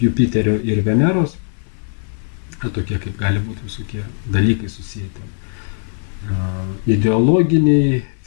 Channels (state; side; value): silent; right; 58 dB below the other